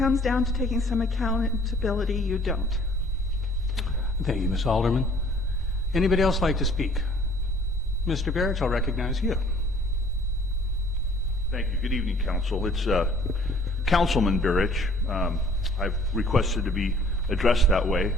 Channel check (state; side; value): normal; both; correlation 0.56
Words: down to taking some accountability. You don't. Thank you, Ms. Alderman. Anybody else like to speak? Mr. Barrett, I'll recognize you. Thank you. Good evening, Council. It's Councilman Burrich. I've requested to be addressed that way.